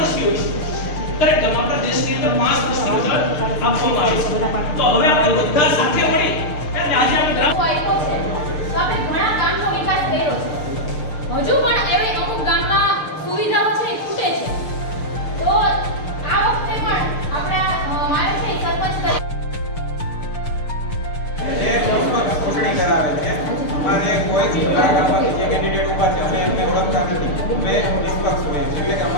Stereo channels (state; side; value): late; right; 6.7 ms